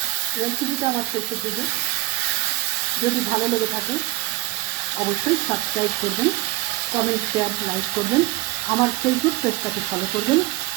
রেসিপিটা আমার শেষের দিকে। যদি ভালো লেগে থাকে অবশ্যই সাবস্ক্রাইব করবেন, কমেন্ট, শেয়ার, লাইক করবেন। আমার ফেসবুক পেজটাকে ফলো করবেন।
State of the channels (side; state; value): left; quieter; 19.0 dB